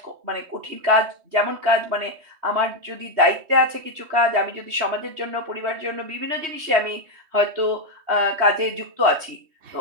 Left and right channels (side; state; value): left; late; 3.1 ms